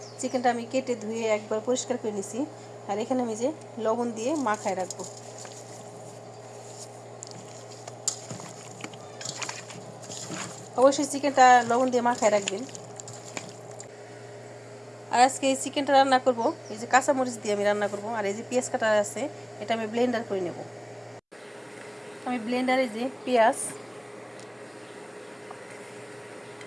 চিকেনটা আমি কেটে ধুয়ে একবার পরিষ্কার করে নিছি, আর এখানে আমি যে লবণ দিয়ে মাখায় রাখবো। অবশ্যই চিকেনটা লবণ দিয়ে মাখায় রাখবেন। আর আজকে এই চিকেনটা রান্না করব এই যে কাঁচামরিচ দিয়ে আমি রান্না করব। আর এই যে পেঁয়াজ কাটা আছে, এটা আমি ব্লেন্ডার করে নেব। আমি ব্লেন্ডারে যে পেঁয়াজ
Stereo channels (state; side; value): identical; both; correlation 1.00